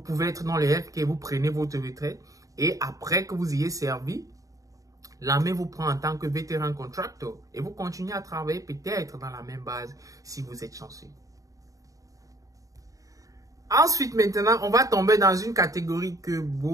être dans le healthcare, vous prenez votre retraite et après que vous ayez servi, l'armée vous prend en tant que vétéran contractor et vous continuez à travailler peut-être dans la même base si vous êtes chanceux. Ensuite, maintenant, on va tomber dans une catégorie que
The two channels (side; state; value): left; late; 0.16 ms